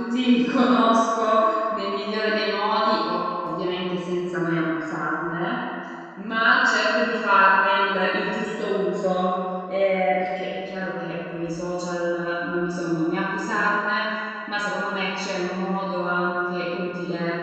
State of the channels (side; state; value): both; identical; correlation 1.00